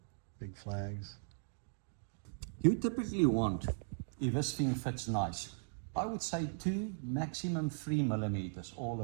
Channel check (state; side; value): silent; left; digital silence